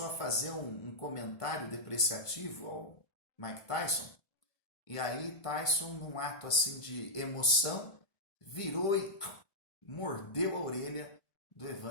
a fazer um comentário depreciativo ao Mike Tyson. E aí Tyson, num ato assim de emoção, virou e mordeu a orelha do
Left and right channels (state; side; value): late; right; 1.5 ms